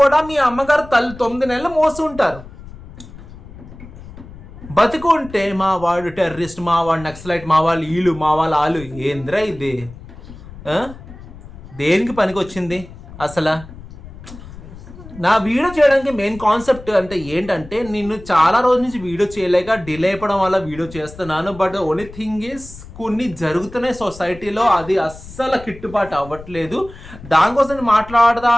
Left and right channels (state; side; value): noise; left; rumble, 17 dB below the sound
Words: మీ అమ్మగారు తల్లి 9 నెలలు మోసి ఉంటారు. బతుకుంటే మా వాడు టెర్రరిస్ట్, మా వాడు నక్సలైట్, మా వాళ్ళు వీళ్ళు, మా వాళ్ళు ఆలు. ఏంద్రా ఇది? దేనికి పనికి వచ్చింది అసలు? నా వీడియో చేయడానికి మెయిన్ కాన్సెప్ట్ అంటే ఏంటంటే, నేను చాలా రోజుల నుంచి వీడియో చేయలేక డిలే అయిపోవడం వల్ల వీడియో చేస్తున్నాను. బట్ ఓన్లీ థింగ్ ఈస్ కొన్ని జరుగుతున్నాయి సొసైటీలో, అది అస్సలు కిట్టుబాటు అవ్వట్లేదు. దానికోసం